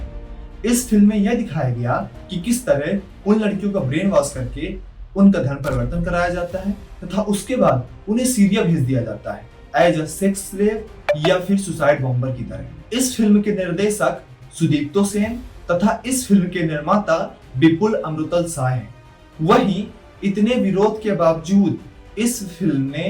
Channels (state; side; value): identical; both; correlation 1.00